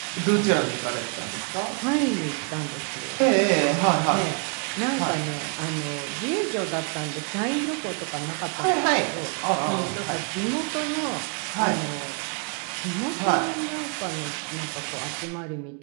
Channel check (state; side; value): quieter; left; 37.5 dB